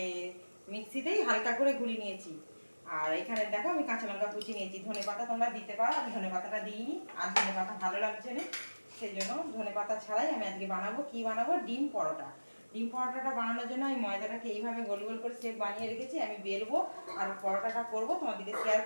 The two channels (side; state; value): both; inverted; correlation -1.00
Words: মিক্সিতেই হালকা করে গুঁড়িয়ে নিয়েছি। আর এখানে দেখো আমি কাঁচা লঙ্কা কুচি নিয়েছি। ধনে পাতা তোমরা দিতে পারো, আমি ধনে পাতাটা দিইনি, আর ধনে পাতা ভালো লাগছে না, সেই জন্য ধনে পাতা ছাড়াই আমি আজকে বানাবো। কি বানাবো? ডিম পরোটা। ডিম পরোটাটা বানানোর জন্য আমি ময়দাটাকে এইভাবে গোল গোল করে শেপ বানিয়ে রেখেছি। আমি বেলবো আর পরোটাটা করবো, তোমাদেরকে শেয়ার